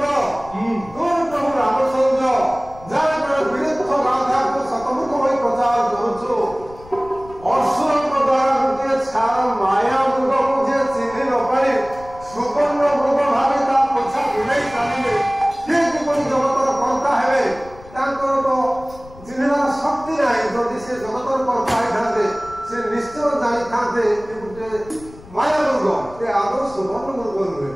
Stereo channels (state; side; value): noise; left; rumble, 20 dB below the sound